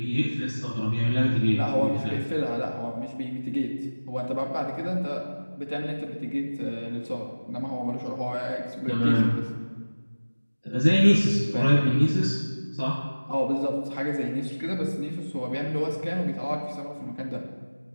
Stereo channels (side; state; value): both; inverted; correlation -1.00